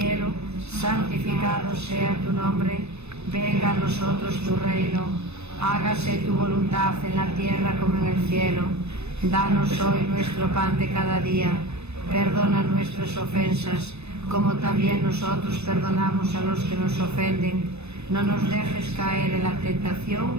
santificado sea tu nombre, venga a nosotros tu reino, hágase tu voluntad en la tierra como en el cielo. Danos hoy nuestro pan de cada día, perdona nuestras ofensas, como también nosotros perdonamos a los que nos ofenden. No nos dejes caer en la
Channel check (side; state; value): left; late; 0.80 ms